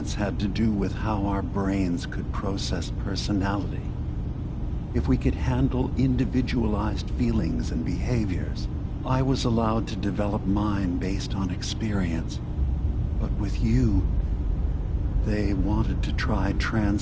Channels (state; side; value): identical; both; correlation 1.00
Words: had to do with how our brains could process personality. If we could handle individualized feelings and behaviors, I was allowed to develop mine based on experience. But with you, they wanted to try